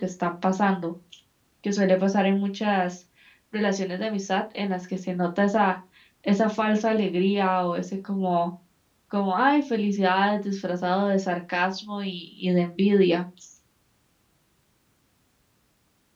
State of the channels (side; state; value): both; identical; correlation 1.00